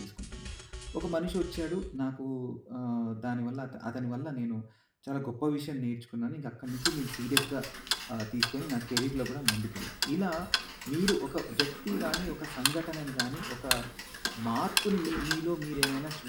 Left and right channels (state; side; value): identical; both; correlation 1.00